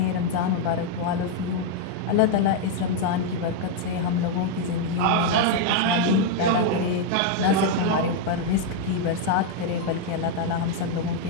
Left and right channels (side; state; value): both; different; correlation 0.00